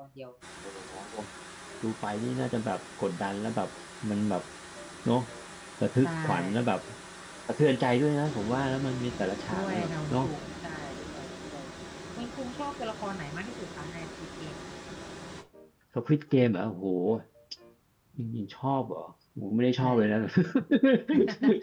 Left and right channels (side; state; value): both; identical; correlation 1.00